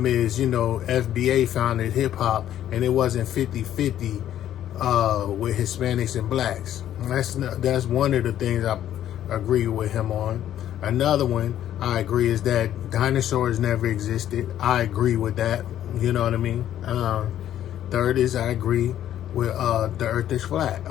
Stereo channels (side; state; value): right; quieter; 11.4 dB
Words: is, FBA founded hip hop, and it wasn't 50-50 with Hispanics and blacks. That's one of the things I agree with him on. Another one I agree is that dinosaurs never existed. I agree with that. You know what I mean? Third is I agree with the earth is flat.